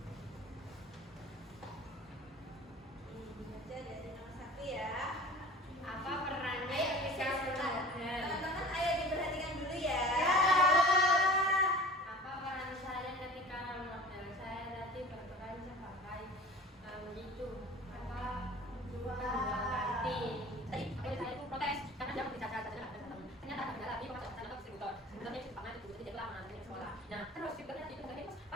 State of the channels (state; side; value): normal; both; correlation 0.41